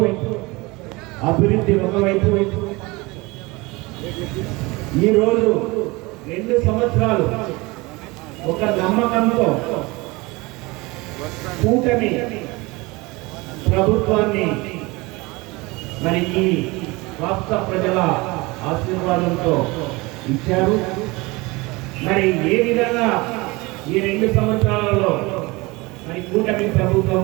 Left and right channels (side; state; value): left; quieter; 23.6 dB